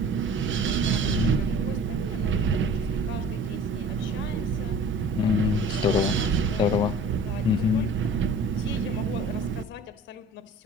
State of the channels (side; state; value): both; normal; correlation 0.45